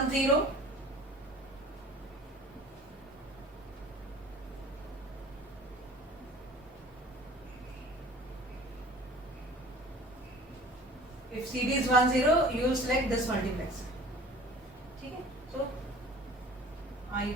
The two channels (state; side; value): normal; both; correlation 0.45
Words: 0, if CD is 1, 0, you will select this multiplexer. Okay? So